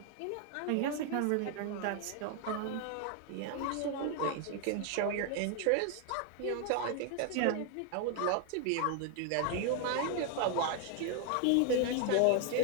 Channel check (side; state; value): both; different; correlation 0.00